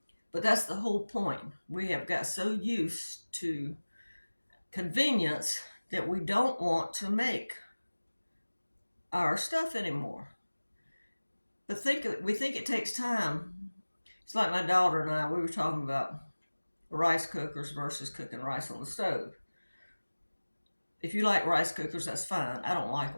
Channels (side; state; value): both; inverted; correlation -1.00